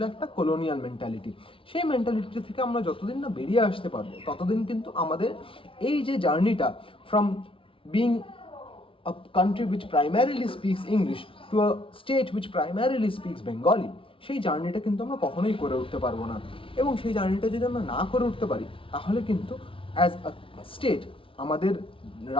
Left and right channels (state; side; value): late; right; 0.26 ms